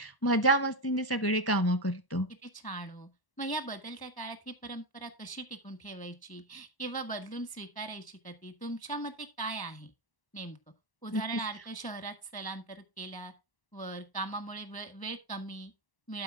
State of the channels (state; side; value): late; right; 1.0 ms